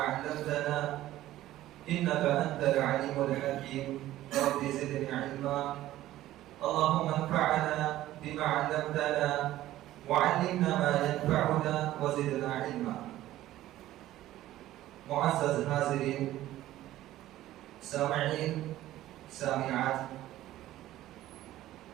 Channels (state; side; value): quieter; left; 14.6 dB